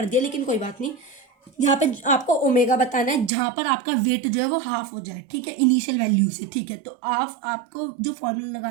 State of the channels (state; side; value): drops out; left; at 3.3 s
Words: दिया लेकिन कोई बात नहीं, यहाँ पे आपको ओमेगा बताना है जहाँ पर आपका वेट जो है वो हाफ हो जाए, ठीक है, इनिशियल वैल्यू से, ठीक है। तो आपको जो फॉर्मूला